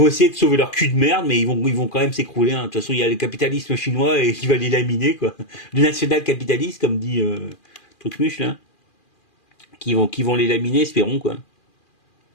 essayer de sauver leur cul de merde, mais ils vont quand même s'écrouler. Hein. De toute façon, il y a le capitalisme chinois et qui va les laminer, quoi. Le national-capitaliste, comme dit Trucmuche, là, qui vont les laminer, espérons, quoi. Donc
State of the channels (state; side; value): late; right; 2.4 ms